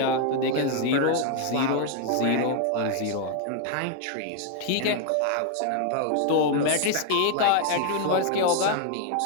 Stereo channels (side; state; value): both; different; correlation 0.00